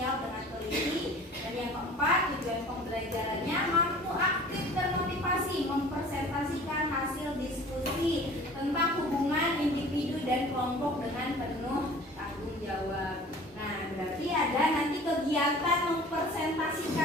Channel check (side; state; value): both; normal; correlation 0.45